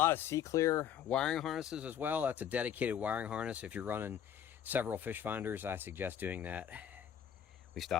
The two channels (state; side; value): quieter; right; 9.2 dB